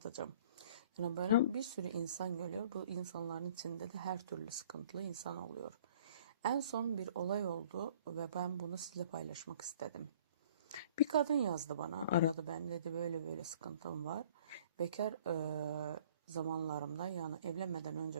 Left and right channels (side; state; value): both; inverted; correlation -0.53